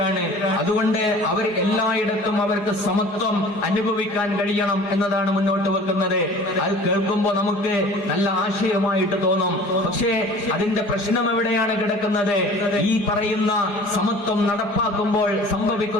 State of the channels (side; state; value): right; late; 4.8 ms